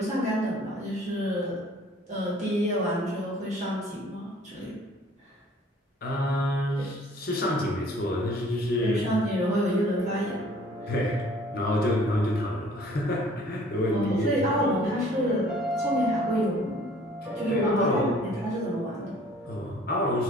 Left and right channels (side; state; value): both; normal; correlation 0.54